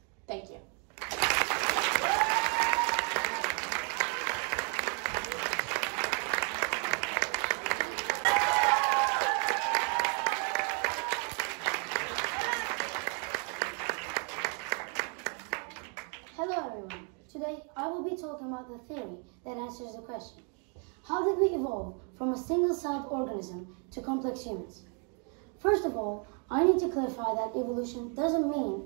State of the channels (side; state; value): left; quieter; 39.4 dB